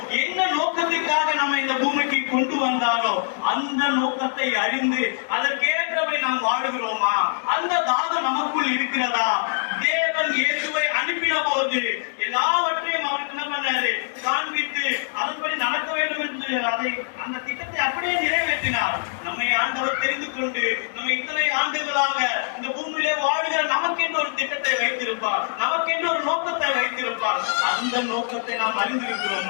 என்ன நோக்கத்திற்காக நம்ம இந்த பூமிக்கு கொண்டு வந்தாரோ, அந்த நோக்கத்தை அறிந்து அதற்கேற்றவை நாம் வாழுகிறோமா? அந்த தாகம் நமக்குள் இருக்கிறதா? தேவன் இயேசுவை அனுப்பின போது எல்லாவற்றையும் அவருக்கு என்ன பண்ணாரு? காண்பித்து அதன்படி நடக்க வேண்டும் என்று அந்த திட்டத்தை அப்படியே நிறைவேற்றினார். நம்மை ஆண்டவர் தெரிந்து கொண்டு நம்ம இத்தனை ஆண்டுகளாக இந்த பூமியிலே வாழுகிற நமக்கென்று ஒரு திட்டத்தை வைத்திருப்பார், நமக்கென்று ஒரு நோக்கத்தை வைத்திருப்பார். அந்த நோக்கத்தை நாம்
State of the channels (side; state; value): right; silent; digital silence